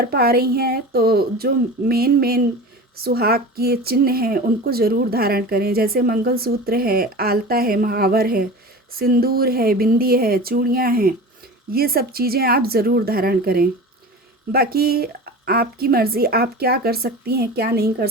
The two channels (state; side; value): normal; both; correlation 0.34